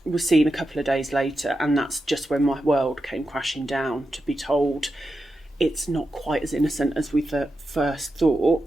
was seen a couple of days later. And that's just when my world came crashing down, to be told it's not quite as innocent as we first thought.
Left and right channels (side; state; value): both; normal; correlation 0.89